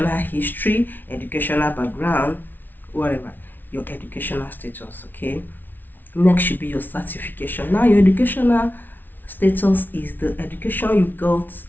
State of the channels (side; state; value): right; late; 0.090 ms